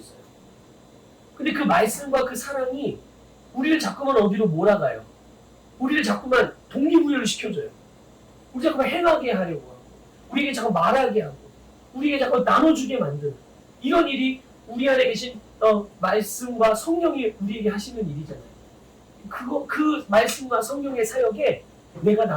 근데 그 말씀과 그 사랑이 우리를 자꾸만 어디로 몰아가요. 우리를 자꾸만 동기부여를 시켜줘요. 우리 자꾸만 행하게 하려고 하고, 우리에게 자꾸 말하게 하고, 우리에게 자꾸 나눠주게 만드는 이런 일이 우리 안에 계신 말씀과 성령이 우리에게 하시는 일이잖아요. 그 말씀과 성령의 사역에 내가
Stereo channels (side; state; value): both; identical; correlation 1.00